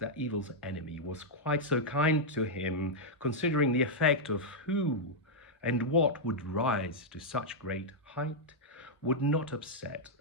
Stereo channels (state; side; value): normal; both; correlation -0.05